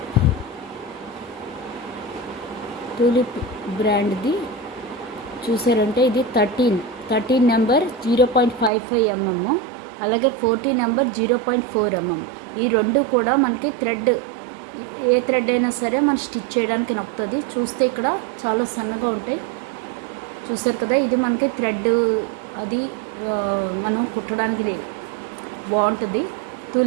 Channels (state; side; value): drops out; left; at 8.7 s